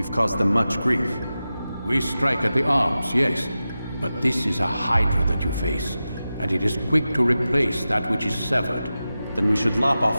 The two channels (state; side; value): inverted; both; correlation -0.93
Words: caused them much grief. We strike at the arms, yes. But this is a hydra that you face, and it is quick to replace that which is severed. Then we should lop off